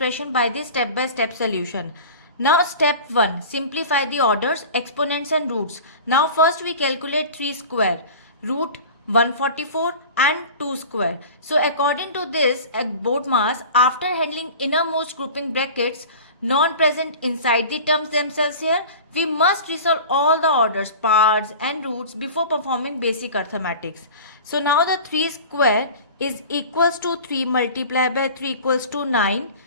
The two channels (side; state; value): both; inverted; correlation -0.37